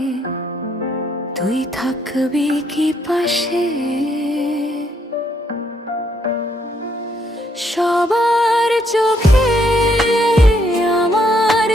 তুই থাকবি কি পাশে? সবার চোখে আমার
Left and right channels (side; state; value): both; normal; correlation 0.72